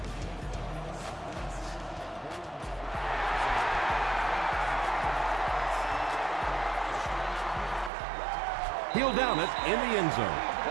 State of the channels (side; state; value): left; drops out; at 7.9 s